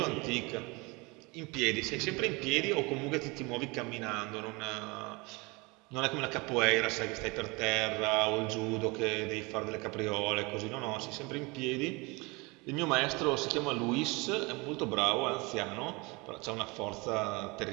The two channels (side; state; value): left; quieter; 26.4 dB